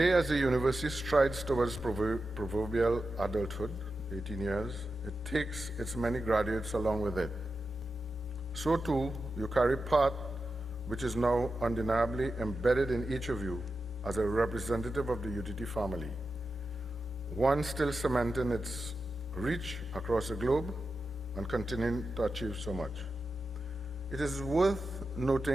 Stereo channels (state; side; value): normal; both; correlation 0.91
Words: as the university strides towards proverbial adulthood, 18 years, it takes its many graduates along with it. So too, you carry part which is now undeniably embedded in each of you as a representative of the UTT family, one still cementing its reach across the globe and continuing to achieve so much. It is worth